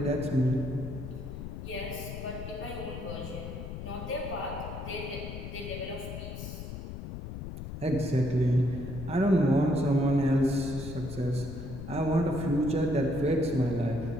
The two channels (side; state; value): left; noise; rumble, 8 dB below the sound